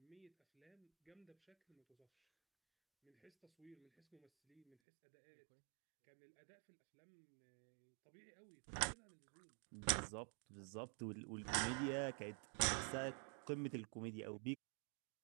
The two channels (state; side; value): drops out; left; at 4.8 s